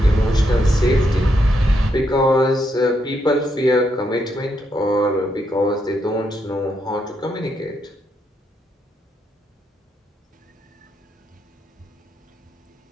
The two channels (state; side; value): normal; both; correlation 0.79